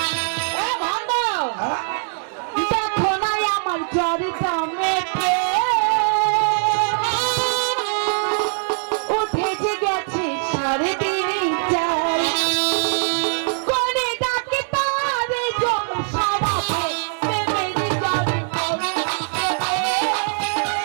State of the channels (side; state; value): left; silent; digital silence